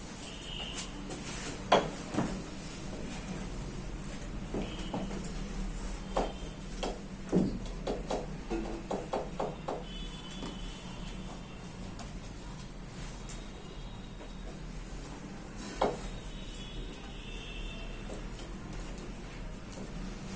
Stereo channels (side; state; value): both; identical; correlation 1.00